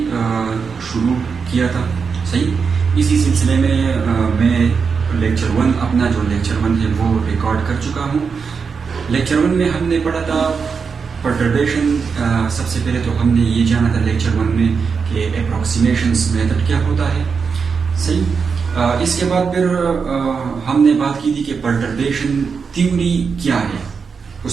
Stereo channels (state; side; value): quieter; left; 5.6 dB